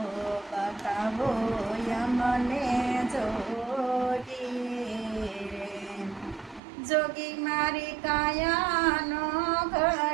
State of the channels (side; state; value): left; drops out; at 6.6 s